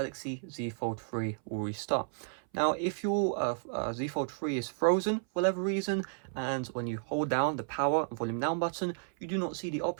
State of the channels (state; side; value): silent; left; 56 dB below the other